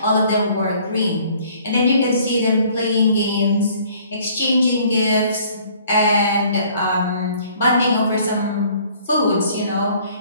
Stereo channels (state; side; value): inverted; both; correlation -0.57